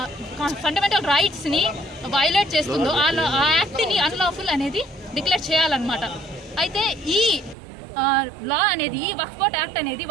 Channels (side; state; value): left; drops out; at 7.6 s